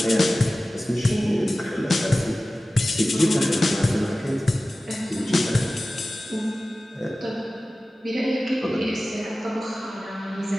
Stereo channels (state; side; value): normal; both; correlation 0.96